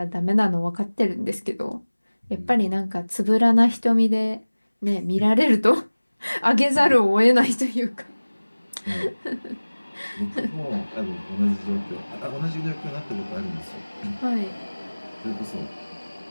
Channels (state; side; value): inverted; both; correlation -1.00